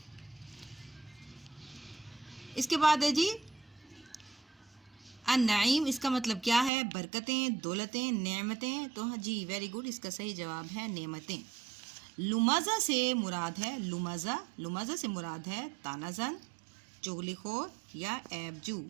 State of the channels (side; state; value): left; drops out; at 6.7 s